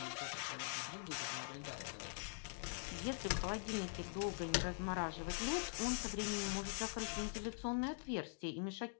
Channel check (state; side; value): silent; right; digital silence